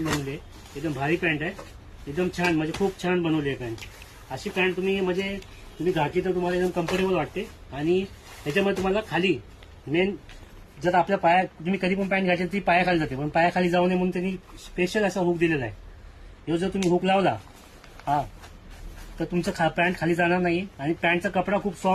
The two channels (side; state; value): both; identical; correlation 1.00